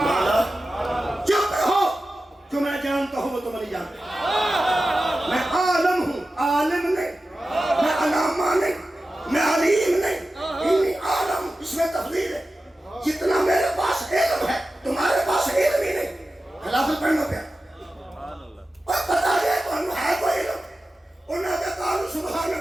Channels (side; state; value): both; normal; correlation 0.94